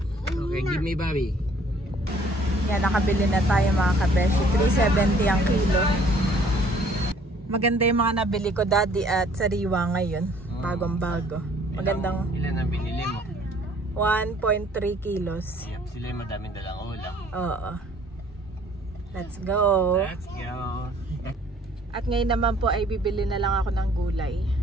Okay, give me Bobby. Yan, nakabili na tayo mga kabeshi. 370 ang kilo. Maganda yung mga nabili ko, Daddy, at sariwa ngayon. Bagong bago. Magandang Ilan ang binili mo? 1.3 kilos. Yep, sila yung madaming dalang ulam. Oo. Let's go. Let's go. At ngayon naman po ay bibili na lang ako ng gulay.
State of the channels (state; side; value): normal; both; correlation 0.58